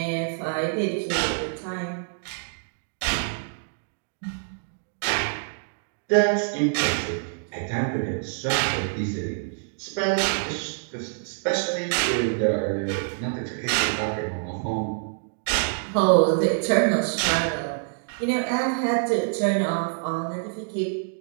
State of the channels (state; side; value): silent; left; digital silence